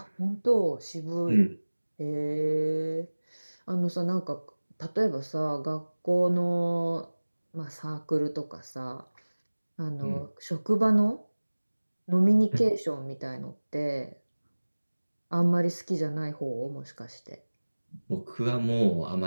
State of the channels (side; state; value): both; inverted; correlation -1.00